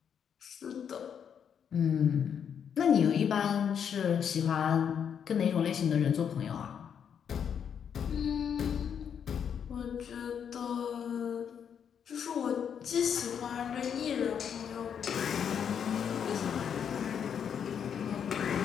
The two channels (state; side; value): quieter; right; 7.9 dB